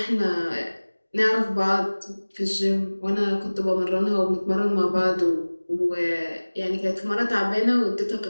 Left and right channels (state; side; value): inverted; both; correlation -1.00